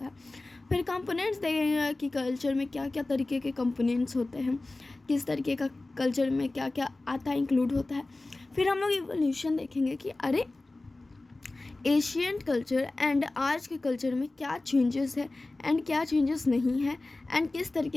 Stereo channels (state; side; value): quieter; right; 3.0 dB